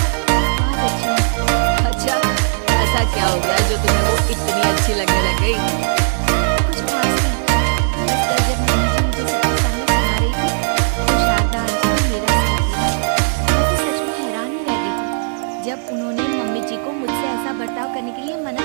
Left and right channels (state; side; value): silent; left; 65 dB below the other